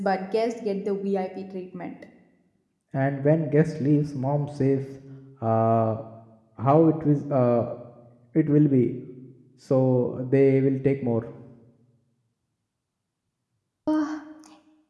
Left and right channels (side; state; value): both; identical; correlation 1.00